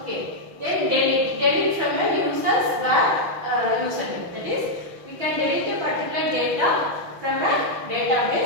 Then delete from a user's username. That is, we can delete a particular data from a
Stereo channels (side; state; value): left; late; 6.2 ms